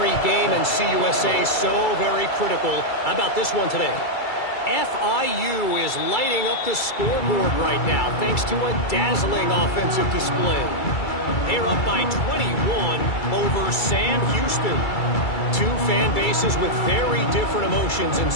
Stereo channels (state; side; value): late; right; 2.3 ms